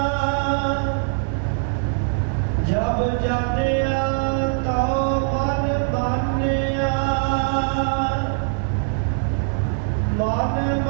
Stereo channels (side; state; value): left; silent; 64 dB below the other